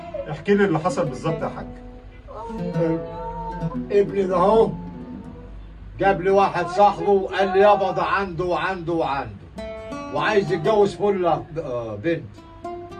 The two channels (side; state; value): both; identical; correlation 1.00